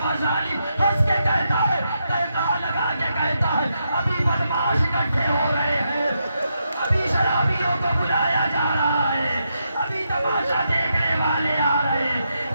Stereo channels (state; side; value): inverted; both; correlation -0.83